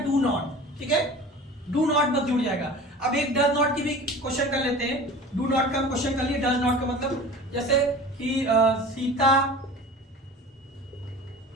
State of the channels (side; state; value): both; normal; correlation 0.39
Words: नॉट। ठीक है, डू नॉट बस जुड़ जाएगा। अब एक डज नॉट की भी क्वेश्चन कर लेते हैं। डू नॉट का क्वेश्चन कर लिए, डज नॉट का मतलब जैसे कि सीता